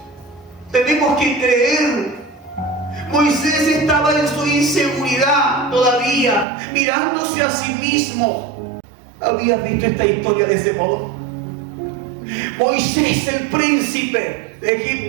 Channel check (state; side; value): drops out; left; at 6.5 s